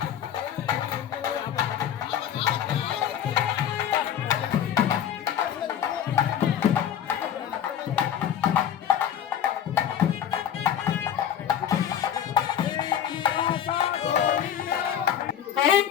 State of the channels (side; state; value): right; quieter; 9.5 dB